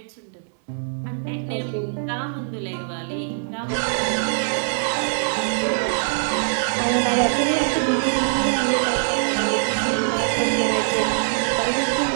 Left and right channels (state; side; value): silent; left; digital silence